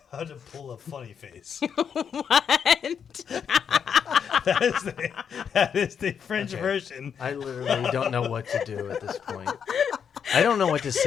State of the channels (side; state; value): right; quieter; 7.4 dB